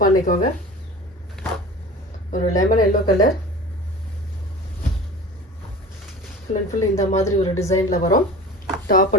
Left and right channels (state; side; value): normal; both; correlation 0.38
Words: பண்ணிக்கோங்க. ஒரு lemon yellow colour full and full இந்த மாதிரி ஒரு டிசைனில் வரும். Top